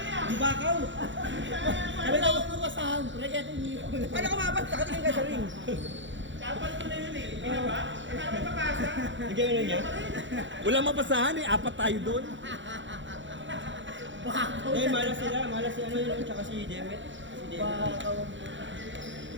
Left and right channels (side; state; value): left; late; 0.54 ms